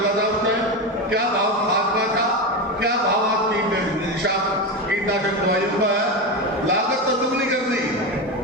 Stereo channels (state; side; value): normal; both; correlation 0.17